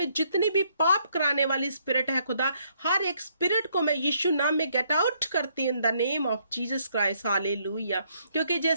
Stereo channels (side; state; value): both; inverted; correlation -0.70